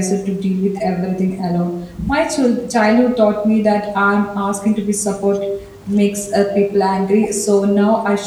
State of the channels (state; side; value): identical; both; correlation 1.00